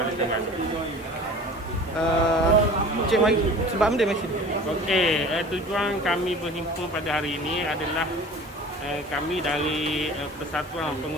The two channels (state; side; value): normal; both; correlation 0.41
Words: Terengganu. Cik Mai, sebab benda masih Okey, tujuan kami berhimpun pada hari ini adalah kami dari Persatuan